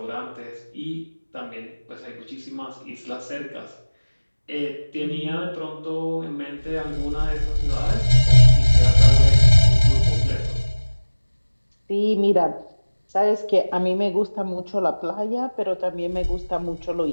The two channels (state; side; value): inverted; both; correlation -1.00